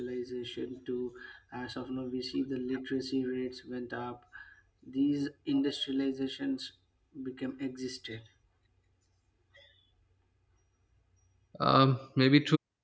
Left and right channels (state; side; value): identical; both; correlation 1.00